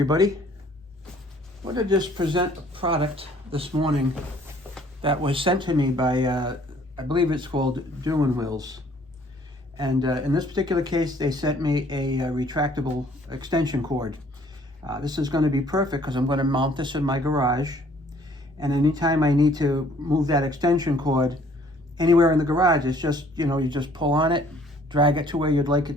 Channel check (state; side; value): normal; both; correlation 0.58